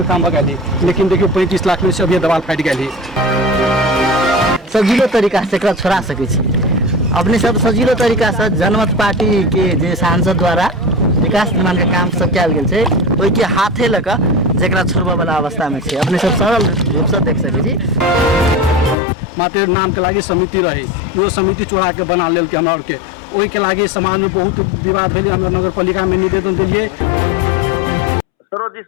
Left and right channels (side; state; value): right; drops out; at 18.9 s